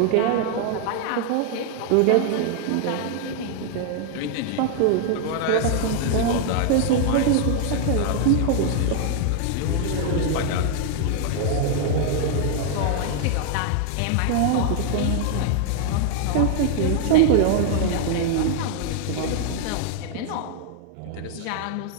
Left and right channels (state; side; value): different; both; correlation 0.00